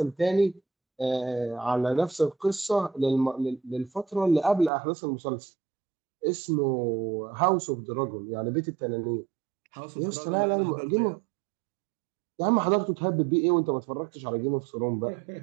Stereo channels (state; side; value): drops out; left; at 4.7 s